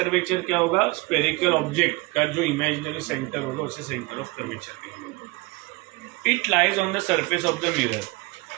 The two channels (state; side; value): quieter; left; 23.8 dB